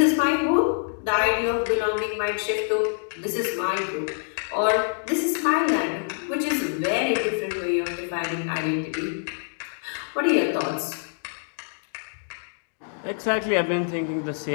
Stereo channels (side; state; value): right; silent; 61 dB below the other